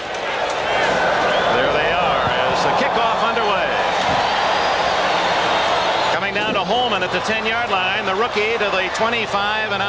There they are as the kickoff underway. Coming down to Holman at the 10-yard line. The rookie to the 25 and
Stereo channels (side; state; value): both; identical; correlation 1.00